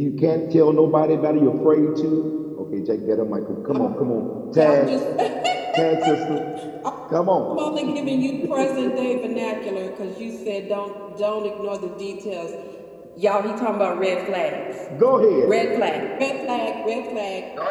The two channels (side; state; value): both; identical; correlation 1.00